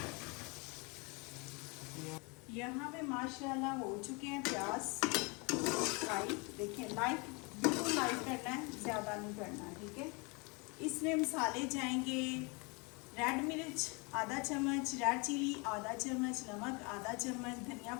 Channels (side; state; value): right; quieter; 29.8 dB